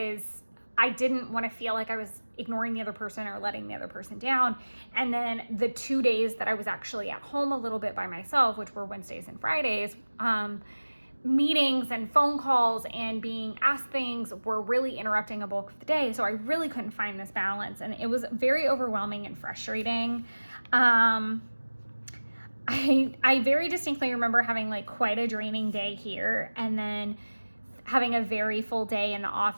I didn't want to feel like I was ignoring the other person or letting the other person down. And then the 2 days that I was actually at home a little bit by myself, which were Wednesdays and Fridays, meetings and phone calls and being asked things were really interrupting a bulk of the day. So I really couldn't find this balance, and it was very overwhelming and frustrating. I very distinctly remember having like quite a draining day here, and then having a very full day in the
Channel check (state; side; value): inverted; both; correlation -1.00